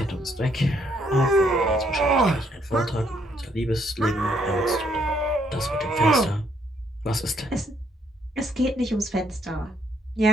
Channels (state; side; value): normal; both; correlation 0.70